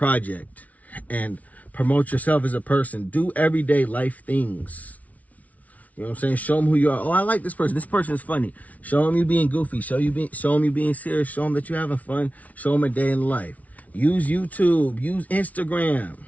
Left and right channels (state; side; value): late; right; 0.070 ms